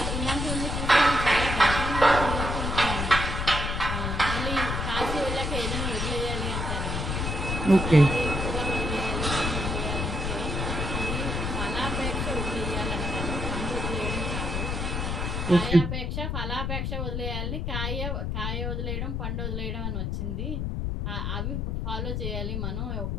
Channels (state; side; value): noise; left; rumble, 1 dB below the sound